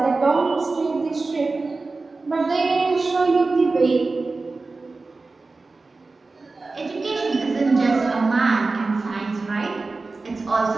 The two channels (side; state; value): left; quieter; 3.7 dB